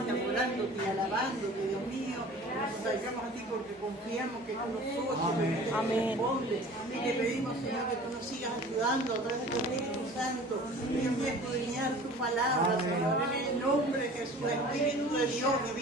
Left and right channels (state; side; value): normal; both; correlation 0.44